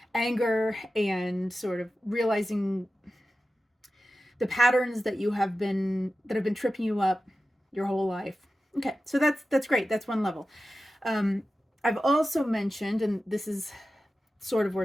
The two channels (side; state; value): both; normal; correlation 0.94